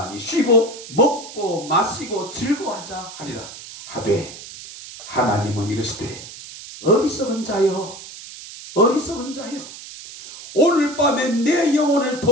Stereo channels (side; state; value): right; noise; hiss, 14 dB below the sound